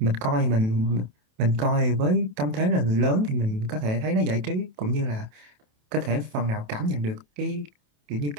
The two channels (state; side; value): late; left; 27 ms